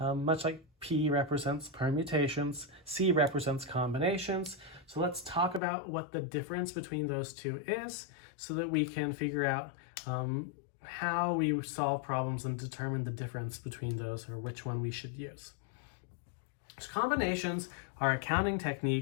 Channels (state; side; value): drops out; right; at 5.6 s